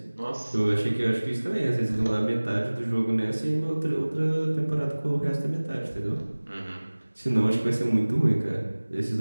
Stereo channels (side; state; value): both; inverted; correlation -1.00